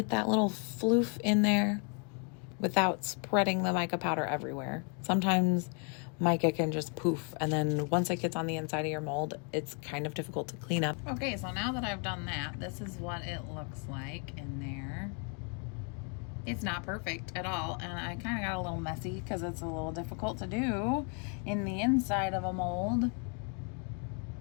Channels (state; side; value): quieter; right; 38.6 dB